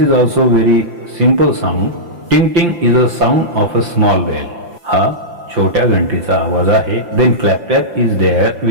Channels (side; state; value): left; late; 5.8 ms